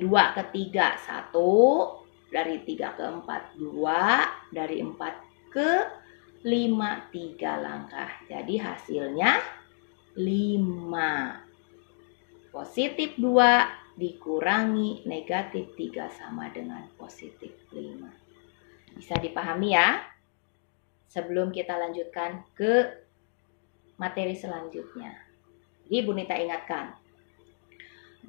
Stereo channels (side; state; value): right; silent; 58 dB below the other